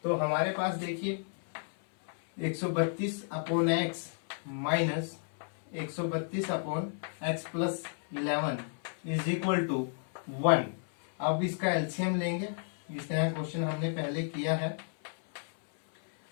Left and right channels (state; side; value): silent; right; 56 dB below the other